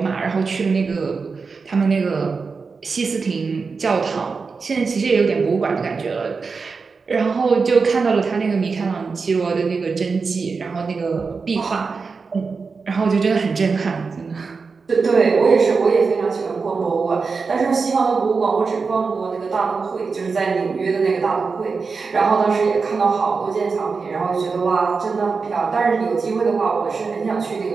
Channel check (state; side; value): quieter; left; 4.8 dB